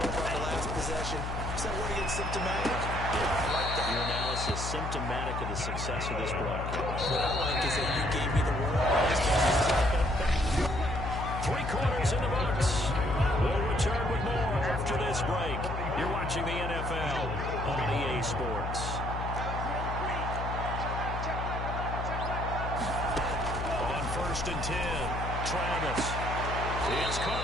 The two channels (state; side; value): noise; left; hum, 4 dB below the sound